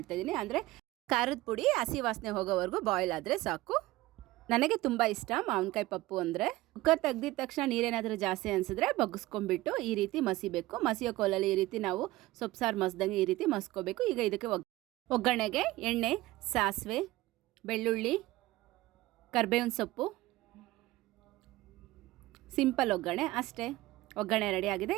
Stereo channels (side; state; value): left; quieter; 18.2 dB